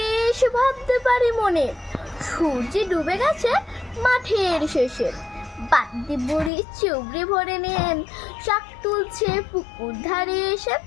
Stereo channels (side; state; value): right; drops out; at 6.5 s